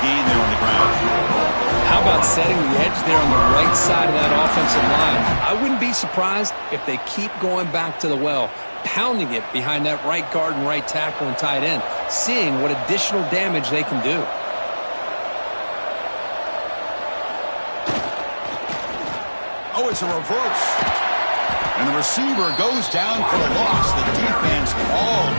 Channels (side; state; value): both; inverted; correlation -1.00